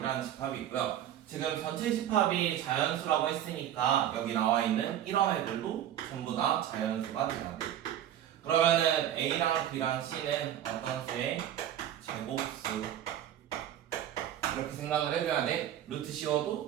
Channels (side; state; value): left; quieter; 11.1 dB